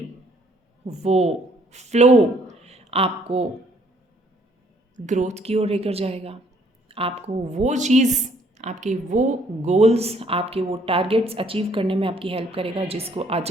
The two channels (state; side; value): normal; both; correlation 0.64